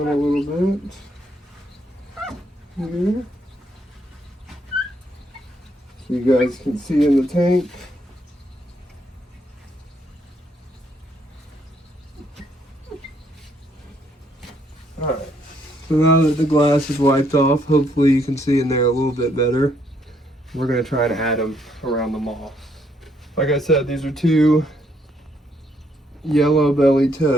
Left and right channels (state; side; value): normal; both; correlation 0.71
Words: a little bit here, so you guys can see in the tank. Alright, so now that the glass is wiped off, hopefully you can see in there a little bit better. We're going to try and add them around the moss. Like I said, these are two yellow belly